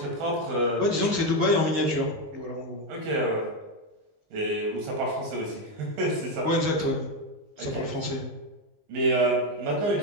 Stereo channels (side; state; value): left; late; 19 ms